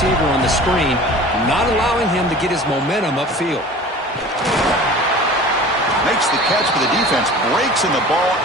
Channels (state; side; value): normal; both; correlation 0.41